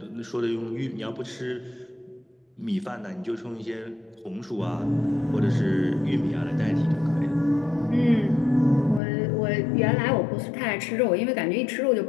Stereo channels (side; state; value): right; drops out; at 9.0 s